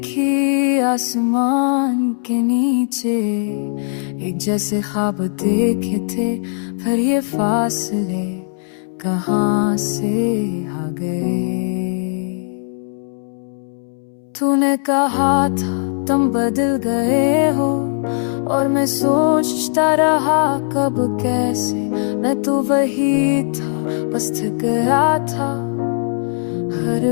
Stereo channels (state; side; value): silent; right; 66 dB below the other